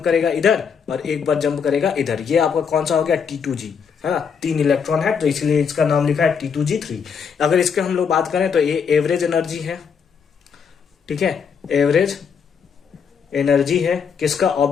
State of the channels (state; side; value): quieter; right; 6.5 dB